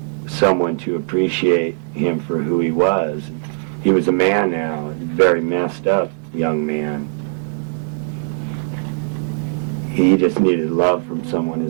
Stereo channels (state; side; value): silent; left; 60 dB below the other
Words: someone to appreciate him for who he was. He was a man now, a very messed up young man. He just needed love from someone